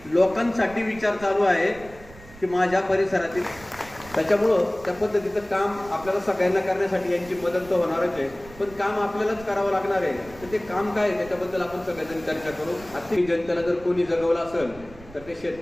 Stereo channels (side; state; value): right; noise; rumble, 19 dB below the sound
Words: लोकांसाठी विचार चालू आहे की माझ्या परिसरातील. त्याच्यामुळं त्या पद्धतीचं काम आपल्याला सगळ्यांना करण्यासाठी यांची मदत तर होणारच आहे, पण काम आपल्यालाच करावं लागणार आहे. तर ते काम काय आहे त्याच्याबद्दल आपण सगळेजण चर्चा करू. आर्थिक जनतेला जर कोणी जगवलं असेल तर ते